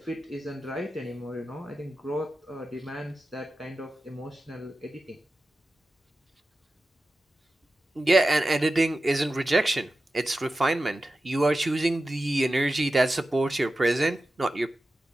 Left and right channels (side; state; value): both; normal; correlation 0.93